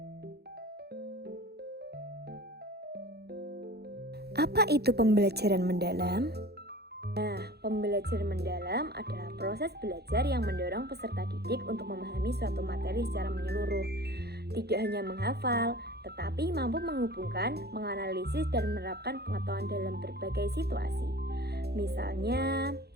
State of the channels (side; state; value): left; late; 0.47 ms